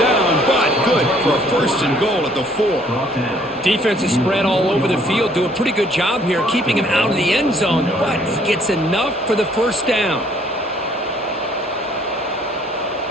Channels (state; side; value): normal; both; correlation 0.62